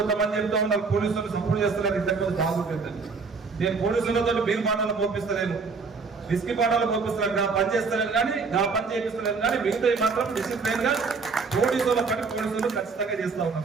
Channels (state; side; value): quieter; left; 4.7 dB